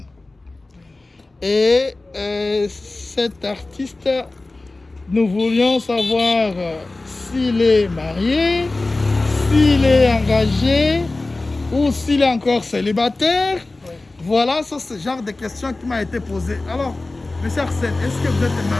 Et cet artiste, nous voulions savoir s'il est marié, s'il est engagé ou s'il est encore célibataire. Oui. Voilà, c'est ce genre de questions qui m'a été posée. Alors, monsieur Arsène, est-ce que vous êtes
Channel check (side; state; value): right; quieter; 3.1 dB